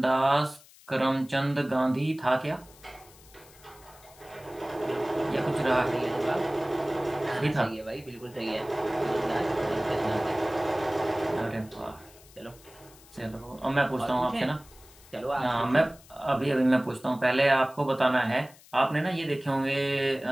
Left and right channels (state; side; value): noise; left; hiss, 24 dB below the sound